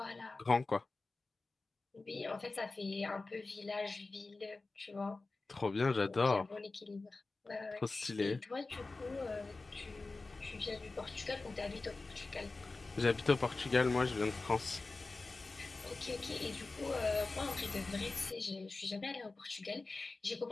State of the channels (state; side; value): quieter; right; 3.5 dB